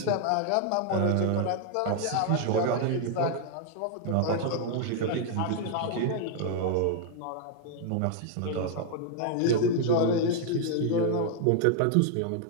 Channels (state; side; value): different; both; correlation 0.00